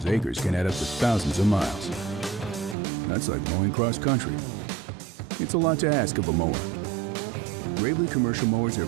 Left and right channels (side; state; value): left; drops out; at 2.8 s